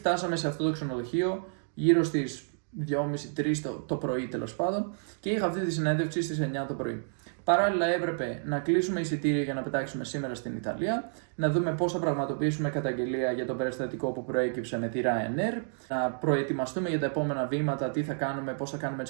σε αυτό το ξενοδοχείο γύρω στις 2.30-3 το πρωί τέλος πάντων και είχα αυτή τη συνέντευξη στις 9 το πρωί. Παράλληλα έπρεπε να κλείσουμε εισιτήρια για να πετάξουμε σήμερα στην Ιταλία, να δούμε πώς θα πραγματοποιήσουμε καταγγελία για το περιστατικό που προέκυψε με τη Ryanair, να προετοιμαστούμε για τα επόμενα βήματα, τι θα κάνουμε, πώς θα κάνουμε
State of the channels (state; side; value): silent; left; digital silence